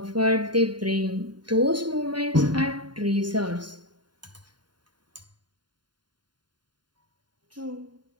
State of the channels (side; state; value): left; late; 0.71 ms